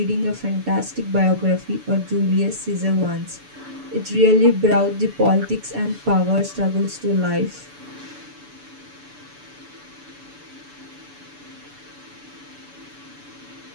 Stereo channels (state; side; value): late; left; 6.9 ms